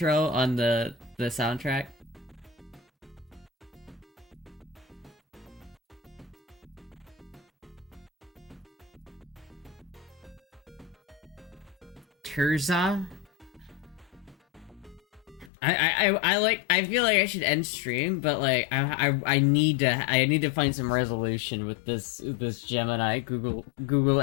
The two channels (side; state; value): right; drops out; at 15.5 s